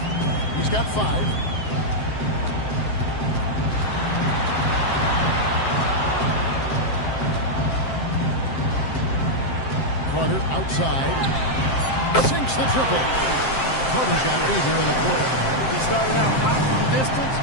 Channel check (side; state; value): right; late; 7.6 ms